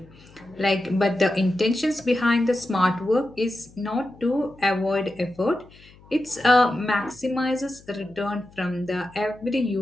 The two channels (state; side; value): noise; left; hum, 25 dB below the sound